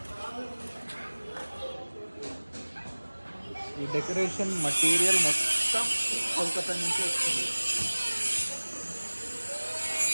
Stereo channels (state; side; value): inverted; both; correlation -1.00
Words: ఈ డెకరేషన్ మటీరియల్ మొత్తం కోల్కతా నుంచి వస్తుంది.